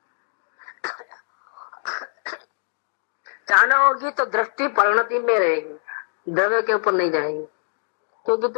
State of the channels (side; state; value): right; silent; digital silence